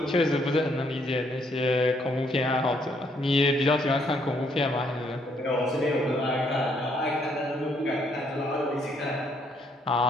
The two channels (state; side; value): normal; both; correlation 0.70